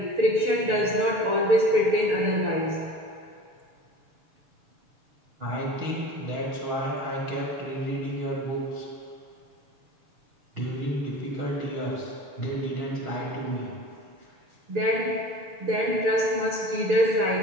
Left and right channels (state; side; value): late; left; 6.8 ms